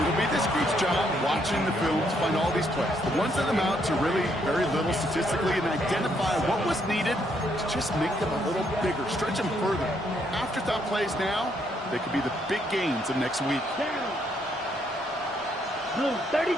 be this group's job watching the film to find all these plays. The ones that amount to really very little statistically and identify what was needed to just make them a little bigger, stretch them further. Afterthought plays now, they could be the big gains of next week. Down. Blue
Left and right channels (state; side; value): normal; both; correlation 0.73